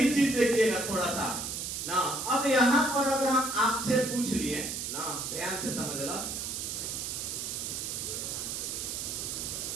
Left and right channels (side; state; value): right; noise; hiss, 4 dB below the sound